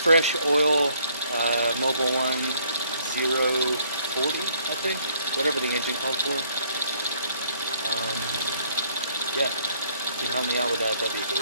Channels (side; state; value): both; inverted; correlation -0.65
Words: oil Mobile 1040, I think, whatever the engine called for. Yeah, if you can help me out with that, that'd be